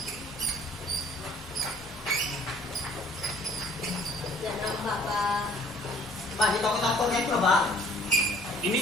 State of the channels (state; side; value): normal; both; correlation 0.55